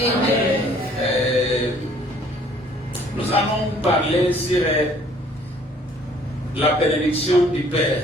Nous allons parler sur la bénédiction du Père.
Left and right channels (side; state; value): both; normal; correlation 0.58